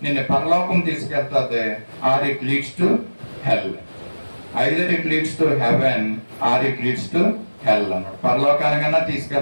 నిన్ను పరలోకం తీసుకెళ్తుంది. Or it leads to hell, either it leads to heaven or it leads to hell అన్నాడు. పరలోకానికన్నా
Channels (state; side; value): inverted; both; correlation -1.00